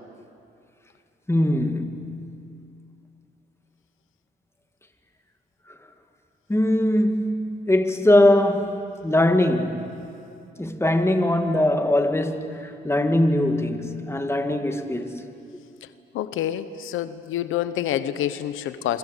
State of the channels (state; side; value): normal; both; correlation 0.82